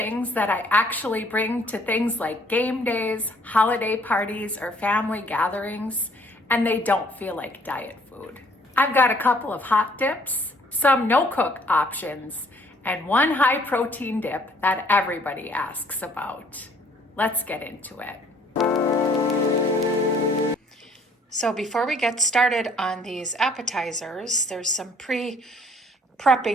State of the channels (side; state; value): both; normal; correlation 0.60